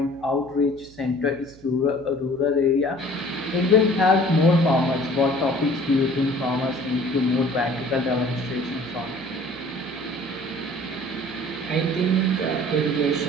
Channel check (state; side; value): noise; right; hum, 23 dB below the sound